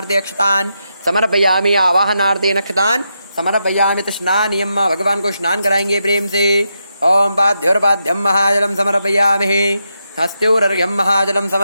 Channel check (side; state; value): both; inverted; correlation -0.84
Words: अक्षतान् समर्पयामि। आवाहनार्थे अक्षतान् समर्पयामि। स्नानियम भगवान को स्नान कराएंगे प्रेम से। ओम पाद्योर्पाद्यम महाजलम समर्पयामि। हस्त्योरर्घ्यं महाजलं